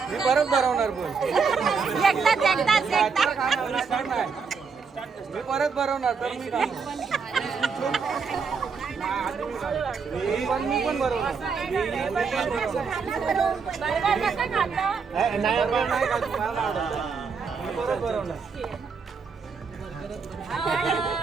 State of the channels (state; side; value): quieter; left; 5.4 dB